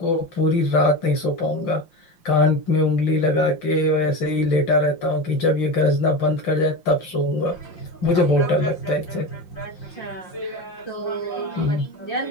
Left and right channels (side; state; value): right; late; 5.7 ms